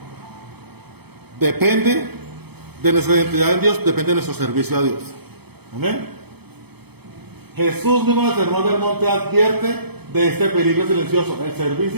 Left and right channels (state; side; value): late; left; 0.97 ms